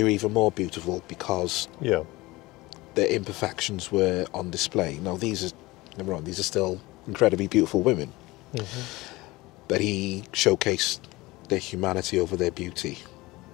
were even more beautiful because their imperfections were on display. Now, these are still incredibly beautiful women. Mm-hmm. But he showcased their humanity over their beauty,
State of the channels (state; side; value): quieter; right; 20.7 dB